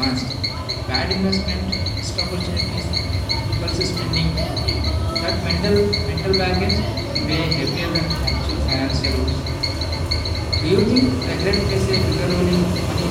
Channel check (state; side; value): identical; both; correlation 1.00